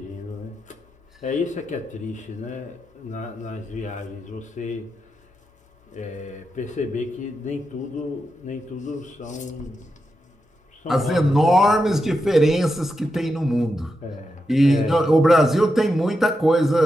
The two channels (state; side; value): normal; both; correlation 0.87